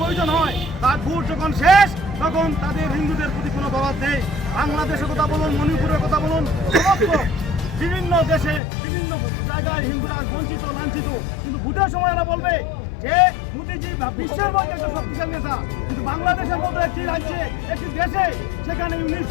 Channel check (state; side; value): drops out; right; at 8.6 s